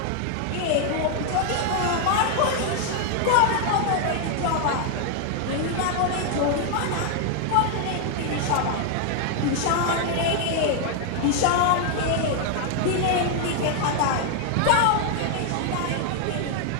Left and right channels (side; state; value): both; different; correlation 0.00